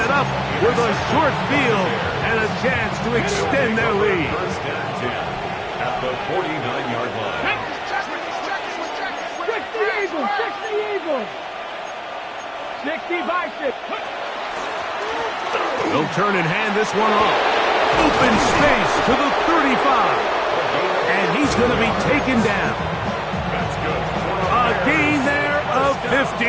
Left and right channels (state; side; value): identical; both; correlation 1.00